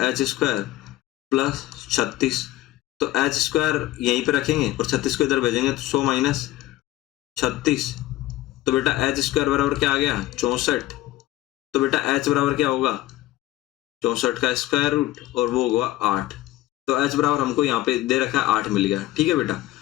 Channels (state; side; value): quieter; right; 15.9 dB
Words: एच स्क्वायर प्लस 36। तो एच स्क्वायर यहीं पे रखेंगे और 36 को इधर भेजेंगे, तो 100 माइनस 36, तो बेटा एच स्क्वायर बराबर क्या आ गया, 64। तो बेटा एच बराबर क्या होगा, 64 का स्क्वायर रूट और वो होगा 8। तो एच बराबर हमको यहाँ पे दे रखा है 8 मिल गया, ठीक है बेटा।